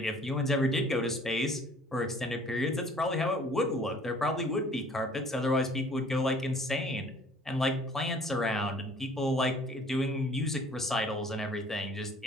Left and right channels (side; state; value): both; normal; correlation 0.54